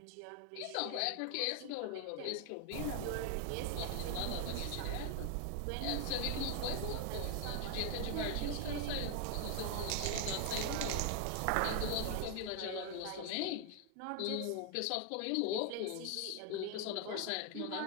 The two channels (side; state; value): both; different; correlation 0.00